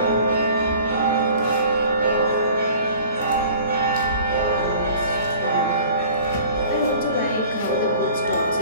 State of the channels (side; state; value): both; inverted; correlation -0.47